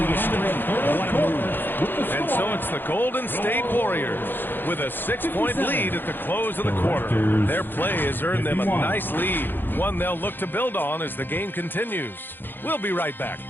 a string. What a move. And so it's the Golden State Warriors with a 6-point lead at the close of the quarter. Their play has earned them a nice lead, one they'll look to build on as the game continues. We'll be right back.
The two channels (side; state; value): right; late; 0.096 ms